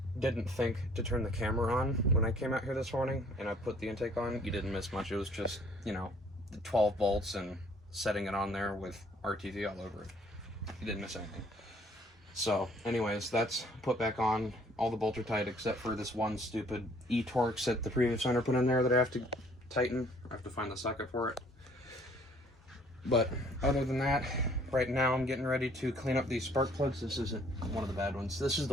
didn't think to turn the camera on when I came out here this morning, and I put the intake on. You didn't miss much. It was just, the 12 volts and setting it on there with RTV all over it. You didn't miss anything. So anyways, that's put back on. All the bolts are tight except for this one stupid E-Torx that the previous owner put in there that I have to tighten. I have to find the socket for it. But other than that, right now I'm getting ready to clean up these spark plugs. This isn't one of the bad ones. This is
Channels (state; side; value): normal; both; correlation 0.59